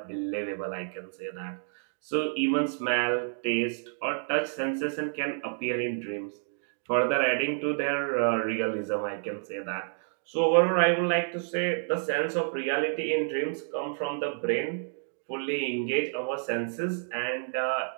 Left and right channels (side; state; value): left; silent; 58 dB below the other